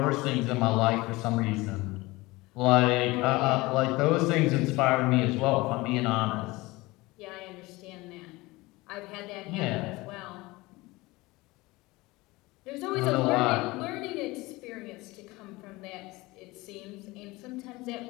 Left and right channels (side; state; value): right; quieter; 21.5 dB